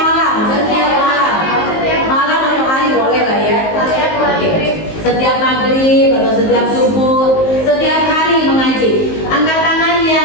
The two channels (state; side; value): late; right; 19 ms